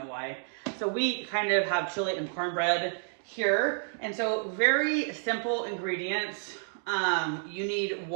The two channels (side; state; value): left; silent; 58 dB below the other